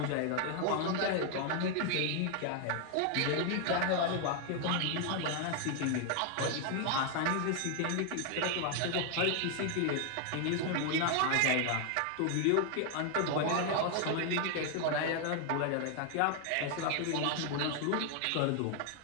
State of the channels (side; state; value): both; different; correlation 0.00